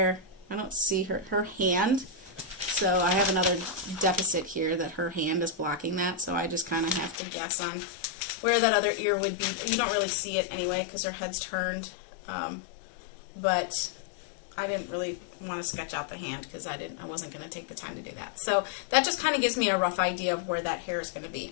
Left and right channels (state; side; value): drops out; right; at 7.2 s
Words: I don't see her hand, so I have another deficit here that her hand is blocking that, so I just kind of have to guess on where that other ear would be. You don't really see it anyway because her head's turned, but I didn't really want to sketch out the hand because I wasn't going to take the time to do that. So that just kind of gives me a rough idea of where that hair is going to